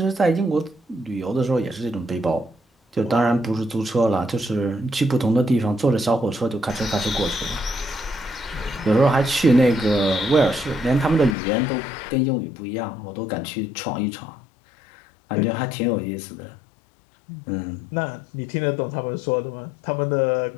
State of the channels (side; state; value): right; drops out; at 11.4 s